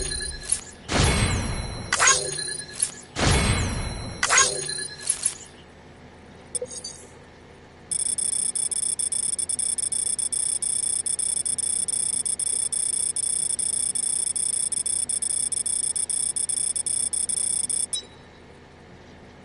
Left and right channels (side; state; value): both; identical; correlation 1.00